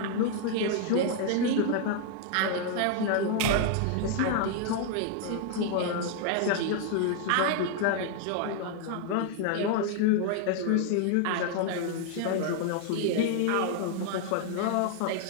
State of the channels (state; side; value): different; both; correlation 0.00